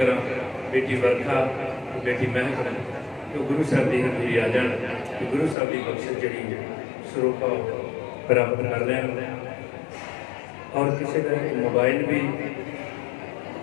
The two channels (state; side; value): drops out; right; at 5.6 s